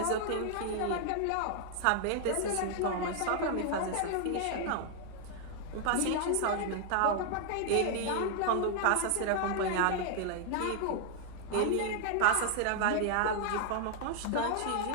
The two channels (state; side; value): different; both; correlation 0.00